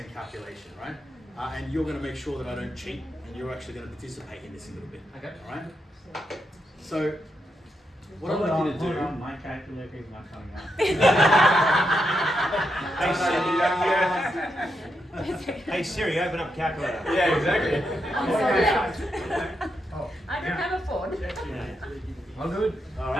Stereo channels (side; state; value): both; normal; correlation 0.83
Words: calculation, right? And you're gonna make sure that I don't cheat, and you're actually gonna participate in this a little bit. Okay. All right. So. What I'd like you to do. My calculator is not coming out. Hey Siri, open up calculator. Yeah, exactly. I don't have a phone. I'm good. All